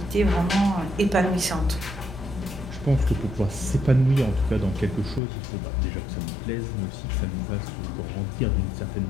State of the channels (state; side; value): drops out; right; at 5.2 s